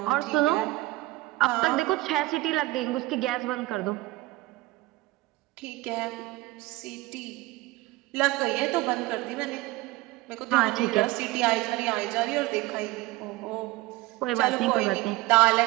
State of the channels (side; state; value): left; quieter; 19.7 dB